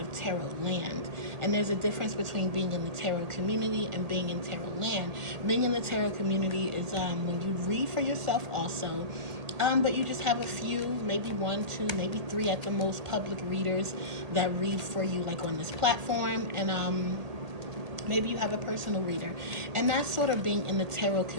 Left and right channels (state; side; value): late; left; 1.8 ms